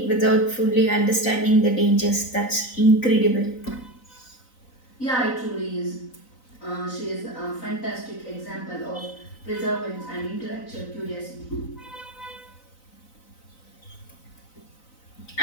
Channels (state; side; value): late; right; 4.0 ms